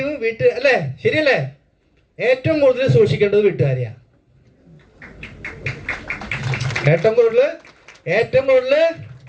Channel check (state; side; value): identical; both; correlation 1.00